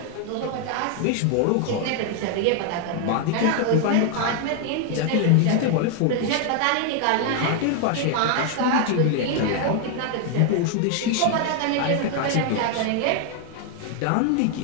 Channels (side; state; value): both; different; correlation 0.00